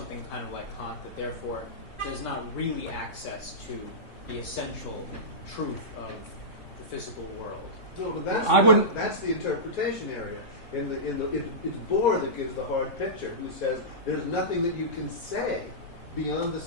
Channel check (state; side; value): late; right; 3.6 ms